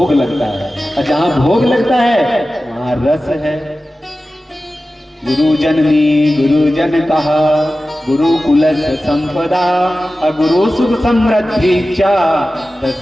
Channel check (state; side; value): normal; both; correlation 0.95